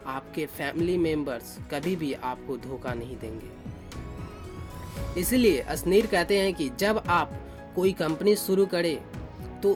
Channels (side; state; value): both; identical; correlation 1.00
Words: आपके फैमिली मेंबर्स कभी भी आपको धोखा नहीं देंगे। इसलिए असनीर कहते हैं कि जब आप कोई कंपनी शुरू करें